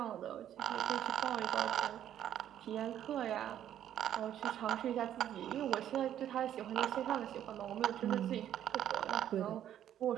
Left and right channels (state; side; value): quieter; left; 10.8 dB